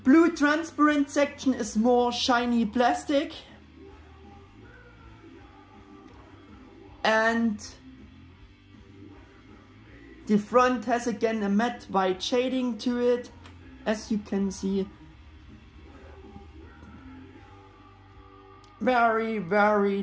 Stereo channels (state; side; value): identical; both; correlation 1.00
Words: transparent section is more shiny plastic. And the front has again a matte white shading to it, as you can see. Very, very